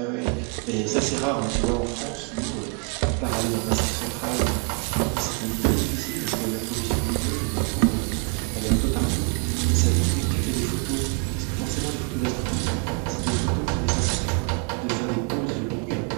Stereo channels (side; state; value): left; quieter; 36.1 dB